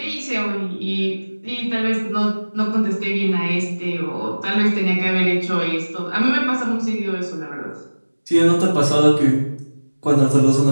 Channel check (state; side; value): inverted; both; correlation -1.00